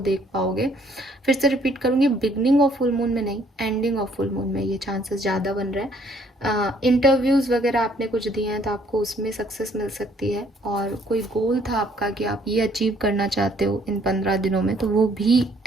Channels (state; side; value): normal; both; correlation 0.63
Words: पाओगे। फिर से रिपीट करूंगी, बिगनिंग ऑफ फुल मून में नहीं, एंडिंग ऑफ फुल मून में ये चांसेस ज़्यादा बन रहे हैं। इंटरव्यूज़ वगैरह आपने कुछ दिए हैं, तो आपको उसमें सक्सेस मिल सकती है, और कोई गोल था आपका कि आप ये अचीव करना चाहते हो इन 15 दिनों में, तो वो भी